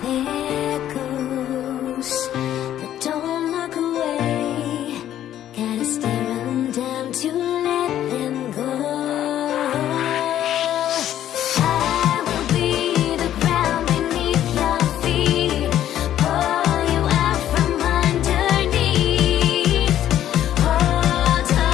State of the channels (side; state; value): right; quieter; 11.6 dB